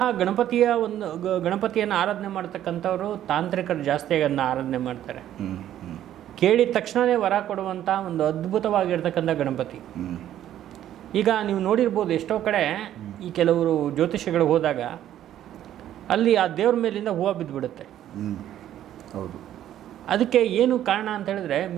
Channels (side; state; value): left; quieter; 11.7 dB